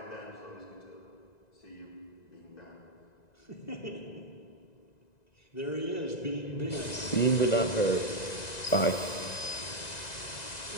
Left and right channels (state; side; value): late; right; 1.9 ms